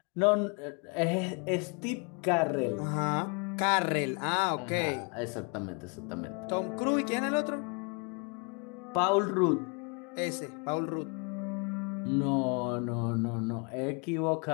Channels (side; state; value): right; quieter; 35.3 dB